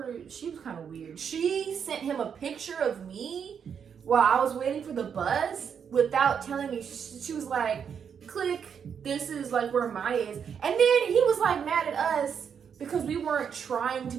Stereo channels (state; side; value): quieter; left; 7.3 dB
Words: She was kind of weird. She sent him a picture of me while I was waiting for the bus without telling me. She was like, click, this is like where Maya is. And then he was like mad at us because we weren't trying to